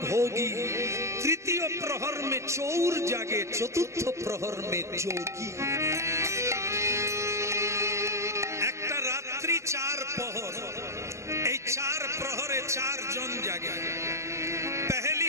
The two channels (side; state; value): left; late; 0.14 ms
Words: तृतीय प्रहर में चौर जागे, चतुर्थ प्रहर में जोगी। একটা রাত্রি 4 প্রহর, এই 4 প্রহরে 4 জন জাগে। पहली